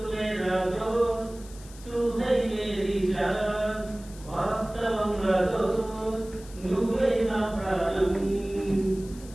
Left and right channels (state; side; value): noise; left; hiss, 20 dB below the sound